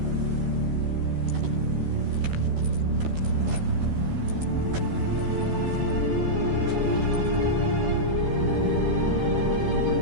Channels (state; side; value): late; left; 13 ms